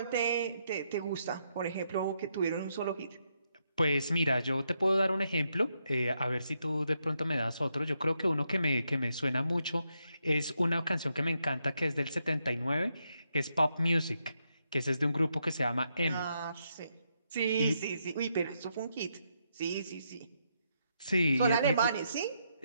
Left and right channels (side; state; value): both; inverted; correlation -0.80